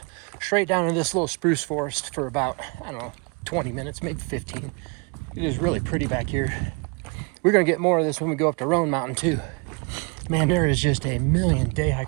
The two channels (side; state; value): left; quieter; 32.5 dB